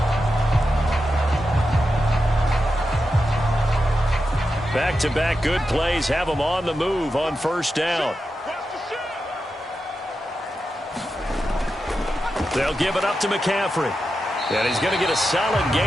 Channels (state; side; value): normal; both; correlation 0.89